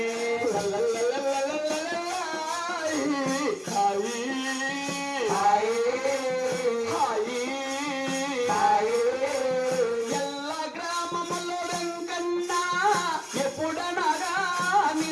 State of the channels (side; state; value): both; identical; correlation 1.00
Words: ఎల్ల గ్రామములో వెంకన్న ఎప్పుడనగా